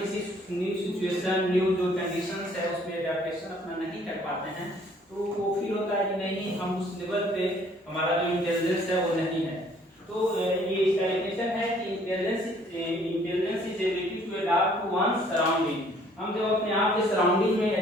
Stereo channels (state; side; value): normal; both; correlation 0.59